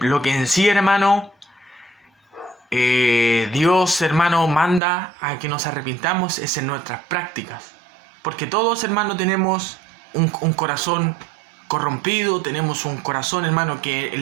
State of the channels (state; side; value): drops out; left; at 4.8 s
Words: lo que en sí, hermano, Dios, hermano, manda a que nos arrepintamos es en nuestras prácticas. Porque todos, hermano, tenemos un corazón corrompido, tenemos un corazón, hermano, que